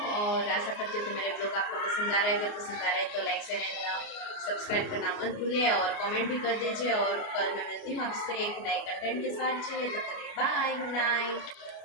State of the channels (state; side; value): late; right; 29 ms